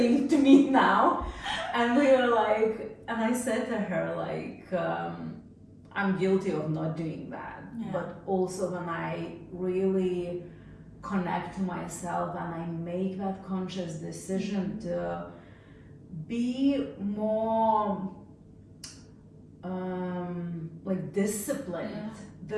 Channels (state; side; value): identical; both; correlation 1.00